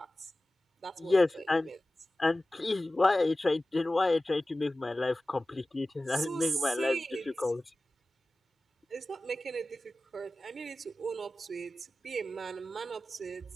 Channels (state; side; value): normal; both; correlation 0.96